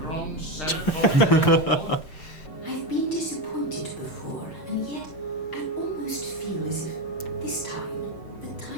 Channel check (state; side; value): late; right; 6.5 ms